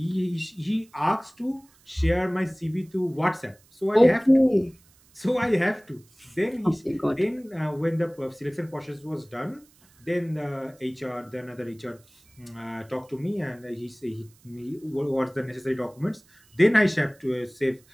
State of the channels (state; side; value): noise; right; hiss, 30 dB below the sound